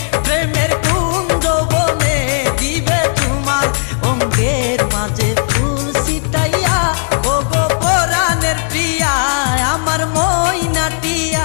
প্রেমের কুঞ্জ বনে দিবে তোমার অঙ্গের মাঝে ফুল ছিটাইয়া। ও গো পরাণের প্রিয়া আমার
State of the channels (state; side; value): silent; right; 70 dB below the other